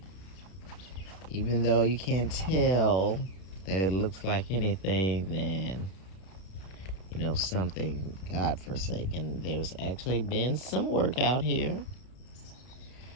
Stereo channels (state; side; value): late; right; 32 ms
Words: even though you can't tell that it looks like anything, then something God-forsaken. There's actually been some work out here.